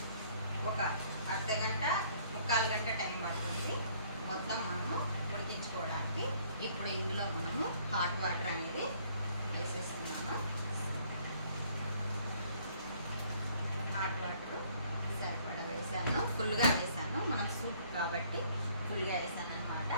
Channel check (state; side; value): inverted; both; correlation -0.61